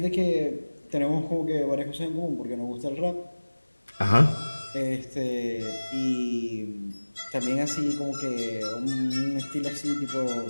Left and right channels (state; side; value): inverted; both; correlation -1.00